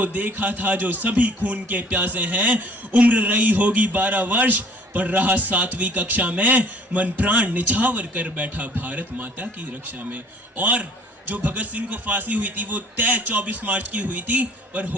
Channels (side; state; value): both; normal; correlation 0.52